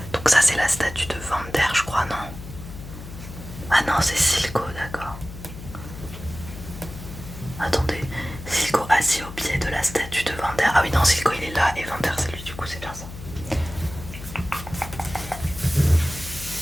Donc ça c'est la statue de Vander, je crois, non? Ah non, c'est Silco, d'accord. Attendez, Silco assis au pied de la statue de Vander. Ah oui, non, Silco il est là et Vander c'est lui, du coup c'est bien ça.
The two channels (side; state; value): left; noise; hum, 12 dB below the sound